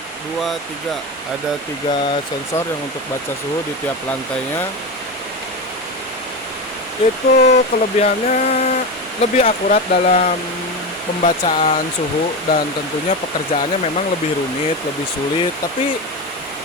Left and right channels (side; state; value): both; normal; correlation 0.19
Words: dua, tiga. Ada 3 sensor yang untuk baca suhu di tiap lantainya. Itu kelebihannya lebih akurat dalam pembacaan suhu dan tentunya pekerjaannya memang lebih rumit, lebih sulit, tapi